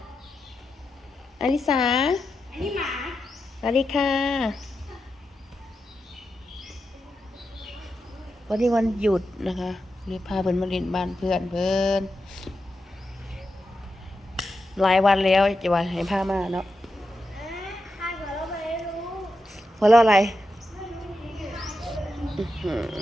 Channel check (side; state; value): both; normal; correlation 0.88